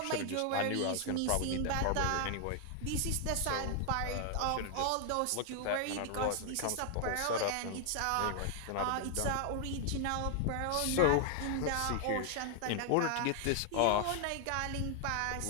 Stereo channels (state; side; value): different; both; correlation 0.00